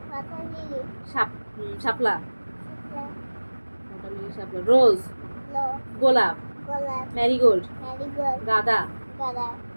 পাতা লিলি. শাপলা, শাপলা. ওয়াটার লিলি, শাপলা, রোজ, লো. গোলাপ, গোলাপ. Marigold, marigold. গাঁদা, গাঁদা.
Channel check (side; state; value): both; inverted; correlation -1.00